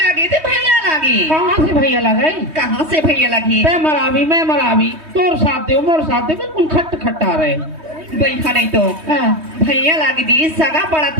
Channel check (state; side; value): late; left; 3.2 ms